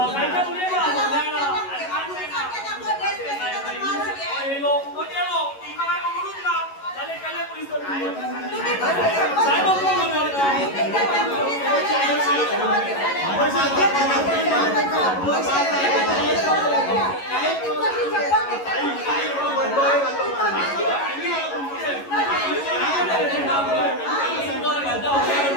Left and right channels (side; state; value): right; late; 11 ms